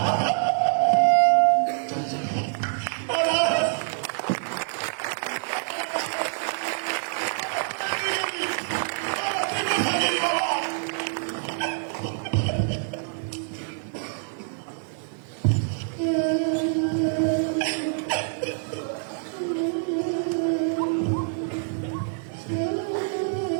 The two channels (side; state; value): left; silent; digital silence